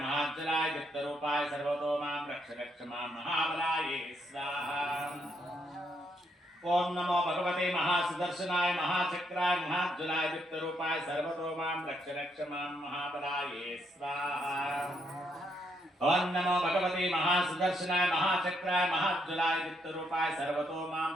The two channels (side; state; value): both; normal; correlation 0.75